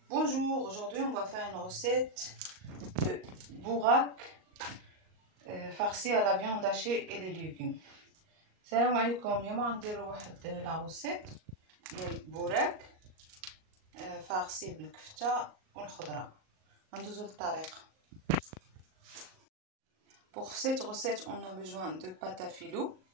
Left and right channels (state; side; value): late; left; 38 ms